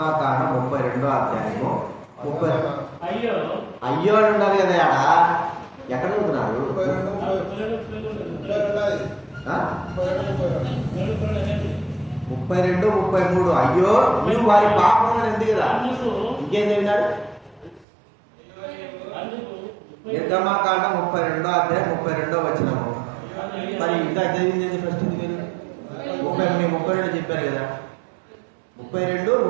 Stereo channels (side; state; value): left; drops out; at 17.9 s